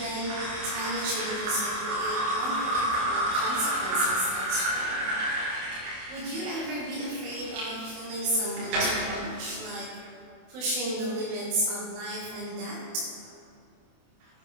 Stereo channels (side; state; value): left; late; 28 ms